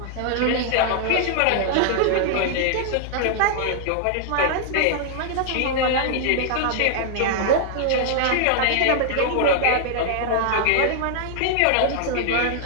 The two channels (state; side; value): different; both; correlation 0.00